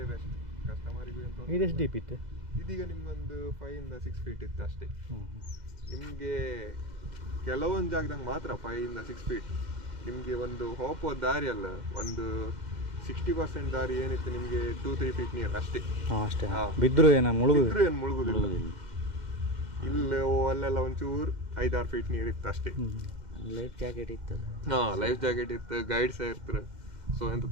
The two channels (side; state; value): left; late; 2.0 ms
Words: ಬೆಸ್ಟ್ ಕಸ್ಟಮರಿಗೂ ಅಂತ. ಇದೆಷ್ಟು ಡೀಪ್ ಇತ್ತು? ಇದೀಗ ನಿಮ್ಗೊಂದು 5 ಇಂದ 6 ಫೀಟ್ ಇತ್ತು ಅಷ್ಟೇ. ನಿಮಗೆ ಕೆಲವೊಂದು ಜಾಗದಾಗ ಮಾತ್ರ 5 ಇಂದ 6 ಫೀಟ್. ನಿಮಗೆ ಒಂದು ಹೋಗುವ ದಾರಿ ಅಲ್ಲ, ಒಂದು 60% ದಾರಿ ಏನಿತ್ತು ನಿಮಗೆ 2-3 ಫೀಟ್ ನೀರು ಅಷ್ಟೇ. ಅಷ್ಟೇ. ಹಾಂ. ಬಿದ್ದರೂ ಏನು ಮುಳುಗು? ಏನು ಮುಳುಗುದಿಲ್ಲ. ಇಲ್ಲ ಅಲ್ಲೆಲ್ಲ ಒಂಚೂರು 5-6 ಫೀಟ್ ನೀರು ಇತ್ತು ಅಷ್ಟೇ. ಲೈಫ್ ಜಾಕೆಟ್ ಇತ್ತಲ್ಲ. ಹಾಂ, ಲೈಫ್ ಜಾಕೆಟ್ ಇತ್ತು, ಗೈಡ್ ಸಹ ಇರ್ತಾರೆ. ಸೊ ಎಂತ